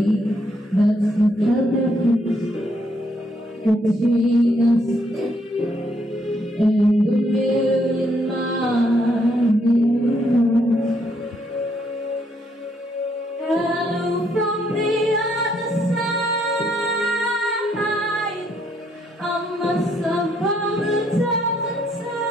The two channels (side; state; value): both; normal; correlation 0.72